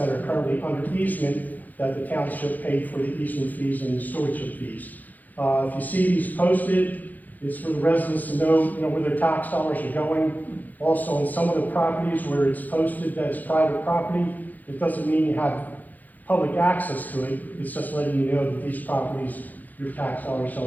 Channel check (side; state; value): right; late; 0.082 ms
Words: are currently under easement that the township paid for the easement fees and the stewardship fees. If you see these posted, it's for the residents to know, where their tax dollars are going. Also, on some of the properties where it's posted that it's private property, it doesn't mean you have public access to it. It's just letting you know that these properties, your tax dollars